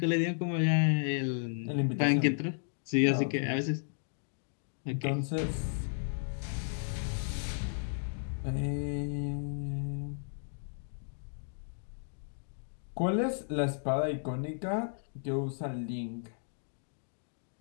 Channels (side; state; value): right; silent; digital silence